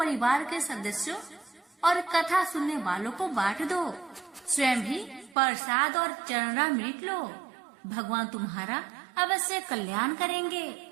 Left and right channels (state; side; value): drops out; left; at 5.4 s